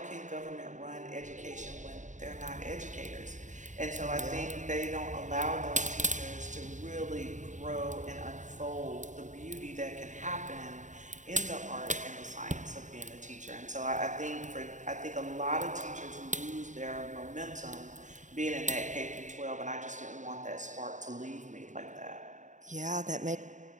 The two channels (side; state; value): left; late; 0.36 ms